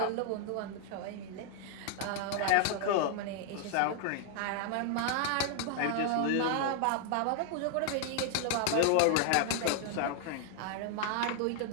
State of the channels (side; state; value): both; different; correlation 0.00